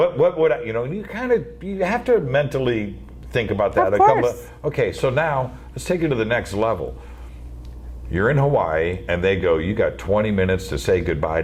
would I, you know, you have to mentally think about that. Of course. Okay, so now let's take it to the next level. You're in Hawaii and they go, you got 20 minutes to say goodbye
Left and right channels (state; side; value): identical; both; correlation 1.00